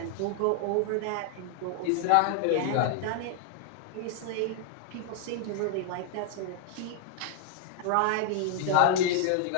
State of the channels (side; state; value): both; different; correlation 0.00